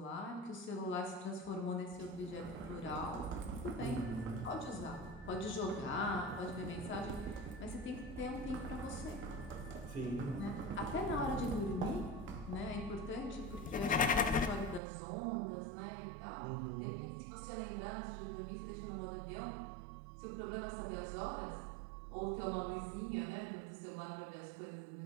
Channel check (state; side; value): drops out; left; at 14.8 s